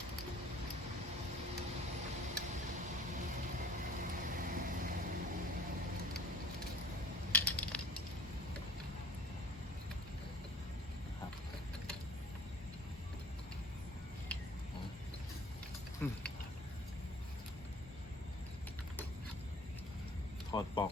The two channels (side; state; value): both; normal; correlation 0.48